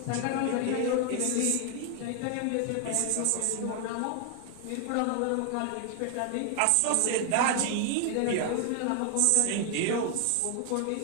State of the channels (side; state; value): both; different; correlation 0.00